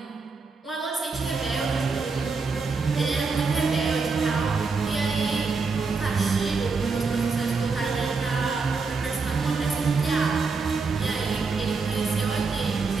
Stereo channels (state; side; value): quieter; left; 4.5 dB